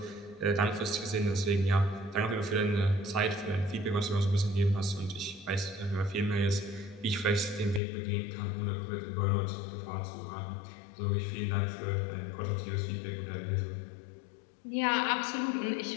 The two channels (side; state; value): right; drops out; at 7.8 s